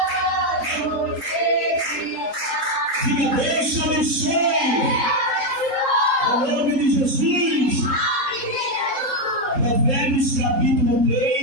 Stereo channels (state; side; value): late; left; 3.8 ms